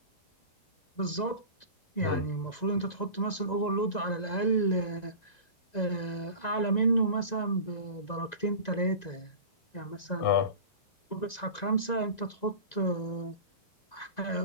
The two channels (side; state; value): right; late; 1.9 ms